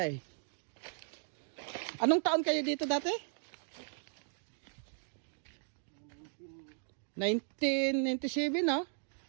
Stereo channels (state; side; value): silent; left; digital silence